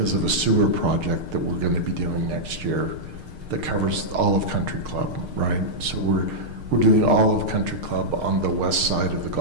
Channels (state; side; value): late; left; 6.5 ms